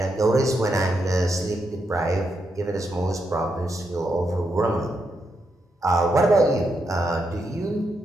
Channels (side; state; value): both; normal; correlation 0.82